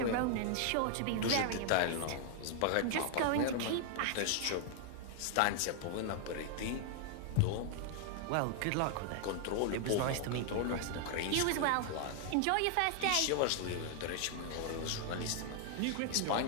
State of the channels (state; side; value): different; both; correlation 0.00